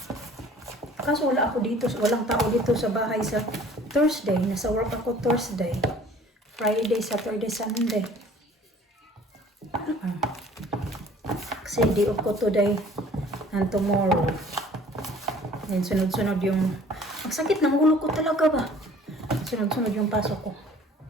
Kaso wala ako dito, walang tao dito sa bahay sa Thursday. Nasa work ako Thursday. Friday, Saturday, Sunday. Kasi day off ko today and tomorrow. Then sunod-sunod yung... Ang sakit ng ulo ko talaga ba? Sunod-sunod yung pasok ko.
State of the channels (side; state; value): both; normal; correlation 0.51